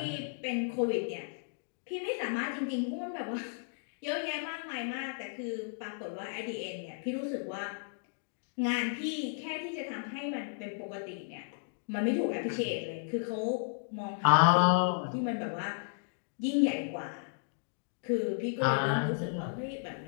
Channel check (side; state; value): right; silent; digital silence